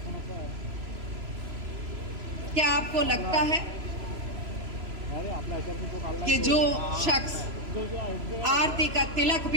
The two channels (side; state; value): left; late; 3.0 ms